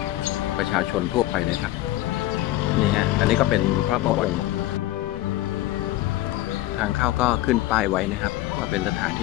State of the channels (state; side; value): quieter; right; 16.2 dB